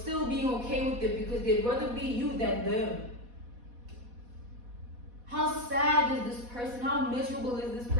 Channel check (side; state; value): left; late; 4.1 ms